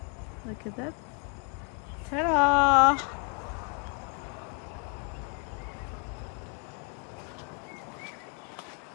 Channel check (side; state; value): right; quieter; 39.7 dB